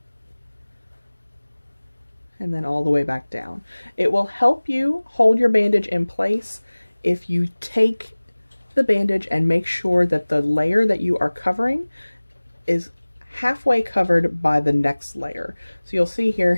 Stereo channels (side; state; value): both; inverted; correlation -1.00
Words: and then all the way back down. It will help you hold your bandage in place if you take the bandage and make sure that the layer that you are covering is halfway covered by the next layer. So you'll see